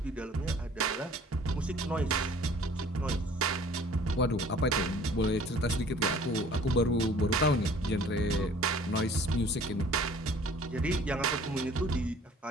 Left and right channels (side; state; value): both; normal; correlation 0.51